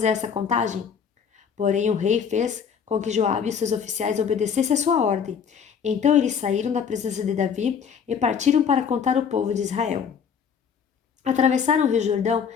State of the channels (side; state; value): right; quieter; 7.0 dB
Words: essa contagem? Porém o rei fez com que Joabe e seus oficiais obedecessem a sua ordem. Então eles saíram da presença de Davi e partiram para contar o povo de Israel. Atravessaram o rio Jordão